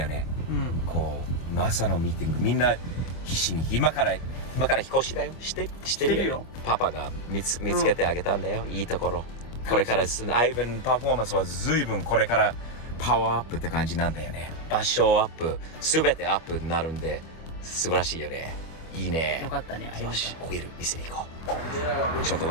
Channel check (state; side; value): late; right; 25 ms